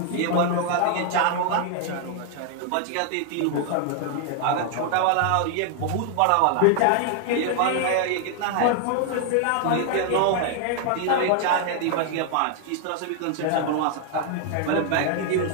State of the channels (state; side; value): different; both; correlation 0.00